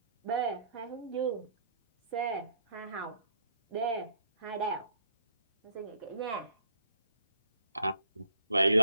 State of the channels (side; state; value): both; inverted; correlation -0.63